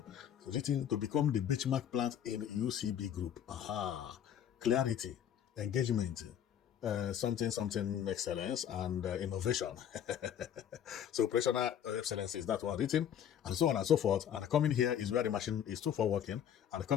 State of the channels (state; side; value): quieter; right; 9.5 dB